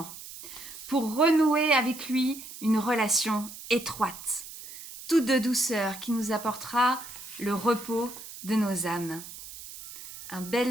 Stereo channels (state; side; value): noise; right; hiss, 14 dB below the sound